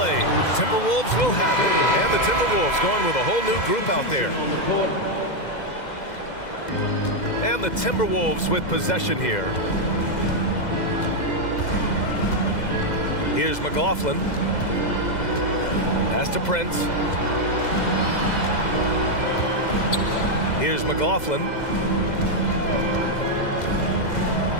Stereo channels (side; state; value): right; late; 2.0 ms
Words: Timberwolves will have it. And the Timberwolves going with a whole new group out there. And the Timberwolves with possession here. Here's McLaughlin. Pass to Prince. Here's McLaughlin.